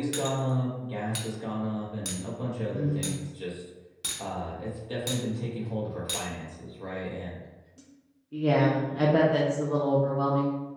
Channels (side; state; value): both; identical; correlation 1.00